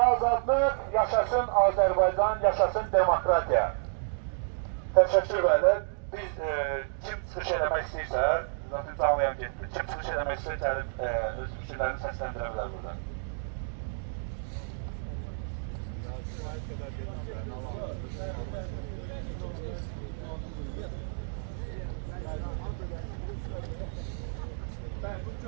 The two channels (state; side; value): silent; left; digital silence